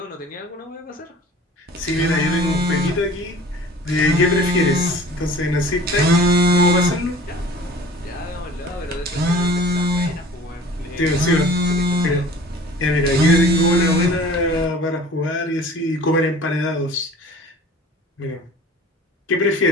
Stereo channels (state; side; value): normal; both; correlation 0.45